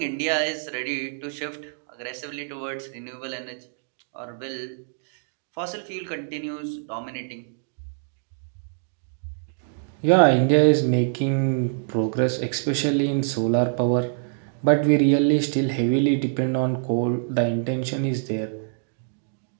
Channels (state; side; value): silent; left; digital silence